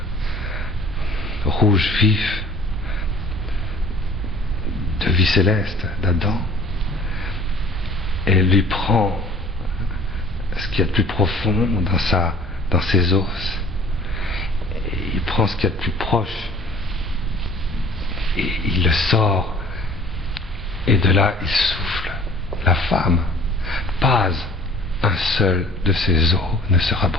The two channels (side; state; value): both; normal; correlation 0.50